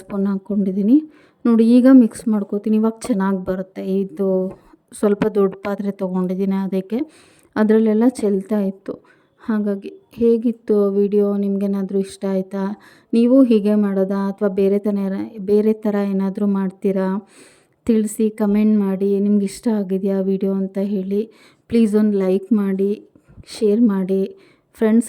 ಸ್ಪೂನ್ ಹಾಕ್ಕೊಂಡಿದ್ದೀನಿ. ನೋಡಿ ಈಗ ಮಿಕ್ಸ್ ಮಾಡ್ಕೋತೀನಿ. ಇವಾಗ ಚೆನ್ನಾಗಿ ಬರುತ್ತೆ. ಇದು ಸ್ವಲ್ಪ ದೊಡ್ಡ ಪಾತ್ರೆ ತೊಗೊಂಡಿದ್ದೀನಿ, ಅದಕ್ಕೆ ಅದರಲ್ಲೆಲ್ಲ ಚೆಲ್ತಾ ಇತ್ತು. ಹಾಗಾಗಿ ಹೇಗಿತ್ತು ವಿಡಿಯೋ, ನಿಮಗೇನಾದರೂ ಇಷ್ಟ ಆಯಿತಾ? ನೀವು ಹೀಗೆ ಮಾಡೋದಾ ಅಥವಾ ಬೇರೆ ಥರ ಏನಾದರೂ ಮಾಡ್ತೀರಾ? ತಿಳಿಸಿ, ಕಮೆಂಟ್ ಮಾಡಿ. ನಿಮ್ಗೆ ಇಷ್ಟ ಆಗಿದೆಯಾ ವಿಡಿಯೋ ಅಂತ ಹೇಳಿ. ಪ್ಲೀಸ್ ಒಂದು ಲೈಕ್ ಮಾಡಿ, ಶೇರ್ ಮಾಡಿ,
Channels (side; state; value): both; identical; correlation 1.00